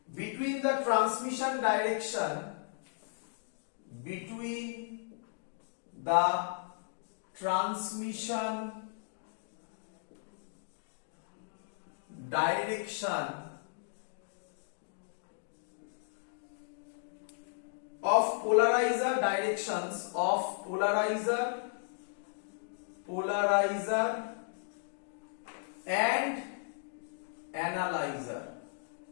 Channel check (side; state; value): right; silent; digital silence